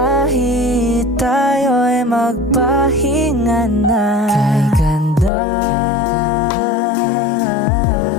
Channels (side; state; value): right; drops out; at 5.3 s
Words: tayo'y magpahinga na. Kay ganda,